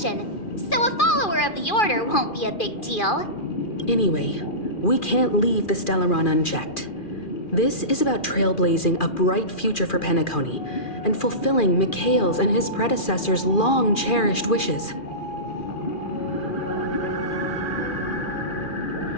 so a follower of the Order won't be a big deal. Anyway, we can't leave the Stellaron unchecked. This is about trailblazing a bright future for Penacony and fulfilling Mikhail's and his predecessors' long-cherished wishes.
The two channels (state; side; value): late; right; 2.4 ms